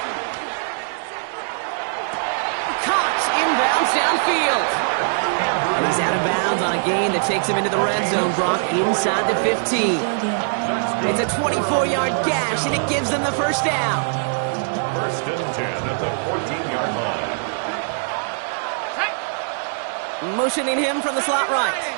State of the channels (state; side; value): silent; left; digital silence